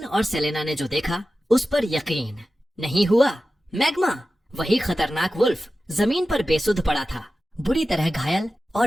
और सेलेना ने जो देखा उस पर यकीन नहीं हुआ। मैग्मा, वही खतरनाक वुल्फ जमीन पर बेसुध पड़ा था, बुरी तरह घायल,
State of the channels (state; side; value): normal; both; correlation 0.94